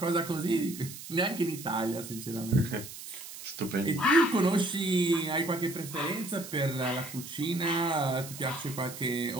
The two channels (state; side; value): noise; right; hiss, 12 dB below the sound